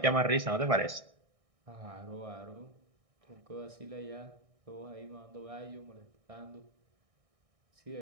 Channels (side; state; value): left; late; 1.6 ms